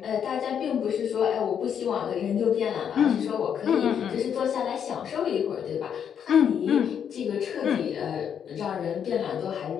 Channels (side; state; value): right; quieter; 8.2 dB